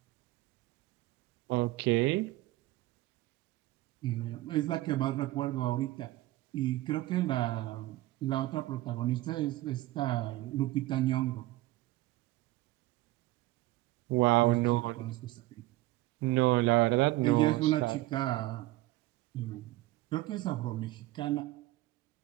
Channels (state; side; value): quieter; left; 17.8 dB